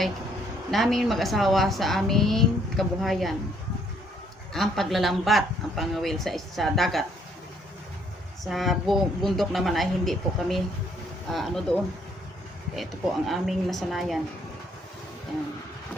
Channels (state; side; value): normal; both; correlation 0.67